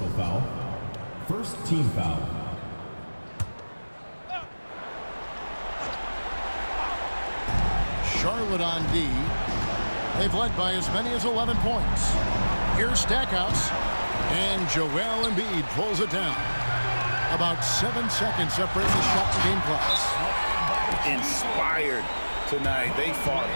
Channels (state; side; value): inverted; both; correlation -1.00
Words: Personal foul. First team foul. Charlotte on D. They've led by as many as 11 points. Here's Stackhouse. And Joel Embiid pulls it down. About 7 seconds separate the shot and game clocks. Inspired tonight. They fought